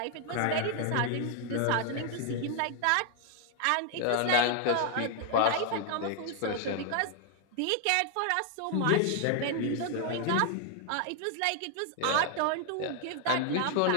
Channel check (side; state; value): both; different; correlation 0.00